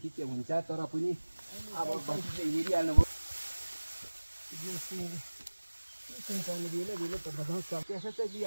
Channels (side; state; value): both; inverted; correlation -1.00